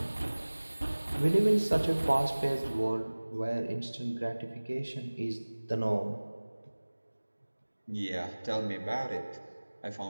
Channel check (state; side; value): inverted; both; correlation -1.00